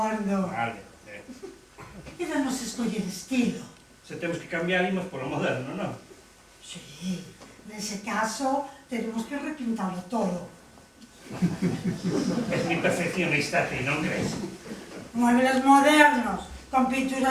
Vale. Quédanos escoller estilo. Se temos que cambiar, imos polo moderno, non? Sí, nese caso, tenemos que repintarlo todo. Es mi perfeccionista, ti, non crees? Muebles modernos, con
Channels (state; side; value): identical; both; correlation 1.00